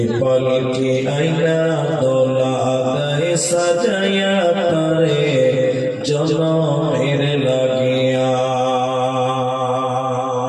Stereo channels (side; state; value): both; identical; correlation 1.00